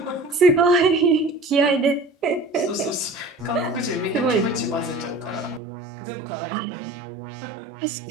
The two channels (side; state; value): left; drops out; at 5.6 s